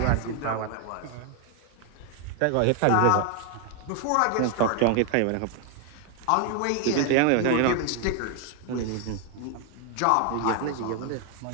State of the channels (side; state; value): both; different; correlation 0.01